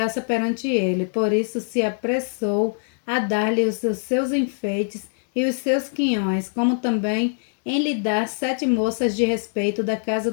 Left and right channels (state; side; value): silent; right; digital silence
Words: perante ele, por isso se apressou a dar-lhe os seus enfeites e os seus quinhões, como também em lhe dar 7 moças de respeito da casa